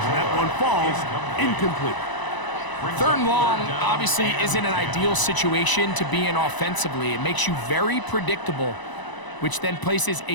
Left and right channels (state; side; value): late; right; 1.0 ms